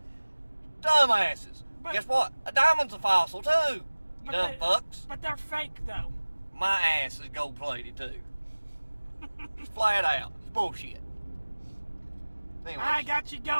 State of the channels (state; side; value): inverted; both; correlation -1.00